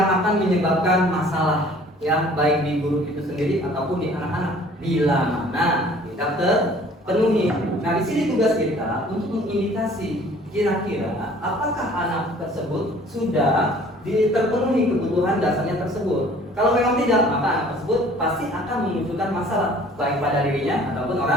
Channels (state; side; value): normal; both; correlation 0.52